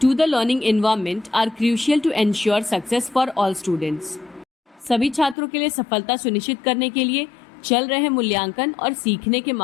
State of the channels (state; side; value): drops out; right; at 5.4 s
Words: to the learning environment are crucial to ensure success for all students. सभी छात्रों के लिए सफलता सुनिश्चित करने के लिए चल रहे मूल्यांकन और सीखने के